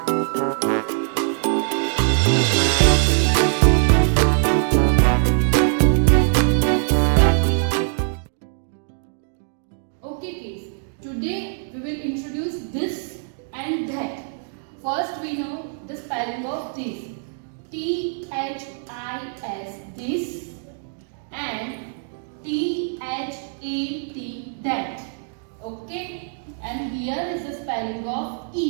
kids, today we will introduce this and that. First we know the spelling of this. T-H-I-S, this, and T-H-A-T, that. Okay, and here is the spelling of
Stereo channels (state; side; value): silent; left; digital silence